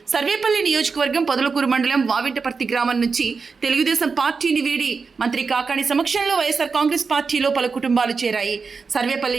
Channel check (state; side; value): quieter; left; 4.9 dB